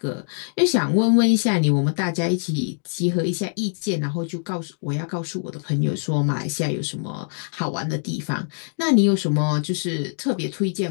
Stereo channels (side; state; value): right; silent; digital silence